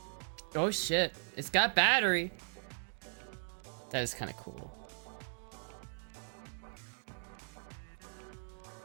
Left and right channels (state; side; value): silent; left; digital silence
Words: Oh shit, it's got battery! That is kind of cool.